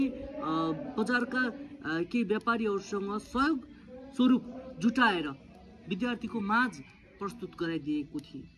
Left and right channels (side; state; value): both; identical; correlation 1.00